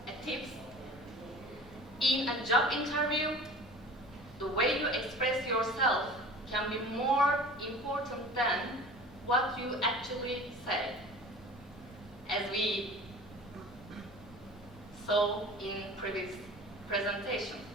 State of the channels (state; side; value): normal; both; correlation 0.41